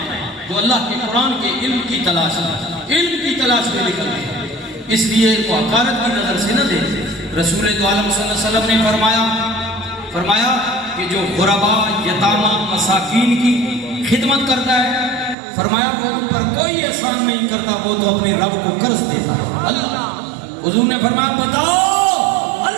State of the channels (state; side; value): drops out; left; at 15.4 s